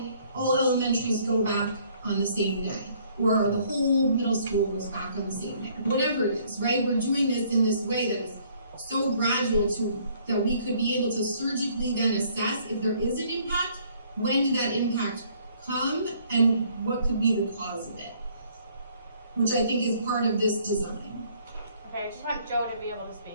all elementaries go back on the same day or the whole middle school goes back on the same day. Whatever it is, right? We're doing this in this way that is so gradual that we could be able to surgically then assess if there is an impact, when did that impact come, and what could be the cause of it, which I think is part of this design. Okay, I just want Joe to be able to speak.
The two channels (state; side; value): inverted; both; correlation -0.62